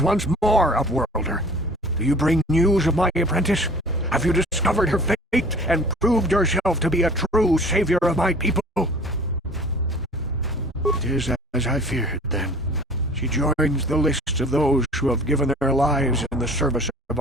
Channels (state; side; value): normal; both; correlation 0.46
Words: once more, Upworlder. Do you bring news of my apprentice? Have you discovered her fate and proved yourself to be a true savior of my people? It is as I feared, then. She joins the list of those who have given their lives in the service of